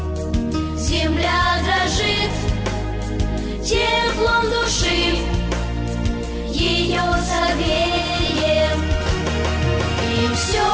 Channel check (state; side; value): identical; both; correlation 1.00